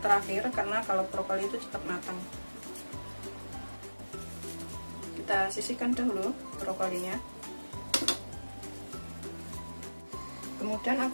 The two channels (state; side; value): inverted; both; correlation -1.00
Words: karena kalau brokoli itu cepat matang. Kita sisihkan dahulu brokolinya. Kemudian